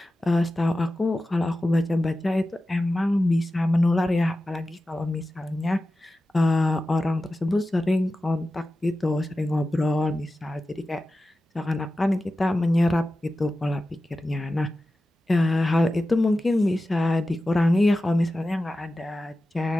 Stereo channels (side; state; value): both; normal; correlation 0.94